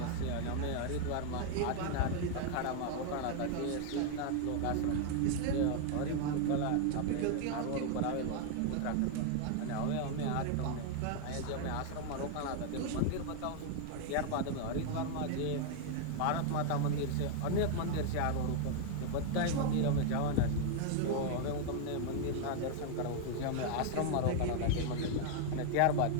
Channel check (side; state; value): both; different; correlation 0.00